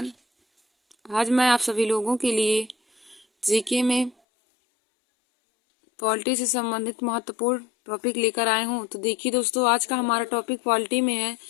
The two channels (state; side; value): drops out; right; at 4.2 s